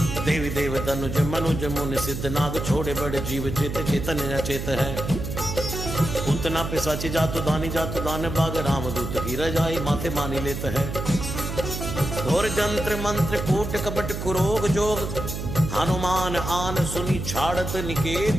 देवी देव तनुज मनुज मुनि सिद्ध नाग छोड़े बड़े जीव चेत चेतन अचेत है उतना पिशाची जातु दान बाग रामदूत की रजाई माथे मानी लेत है घोर जंत्र मंत्र कूट कपट कुरोग जोग हनुमान आन सुनी छाड़त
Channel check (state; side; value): noise; right; hum, 5 dB below the sound